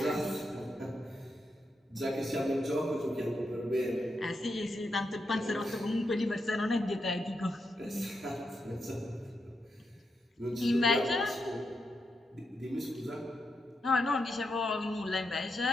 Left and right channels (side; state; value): both; normal; correlation 0.84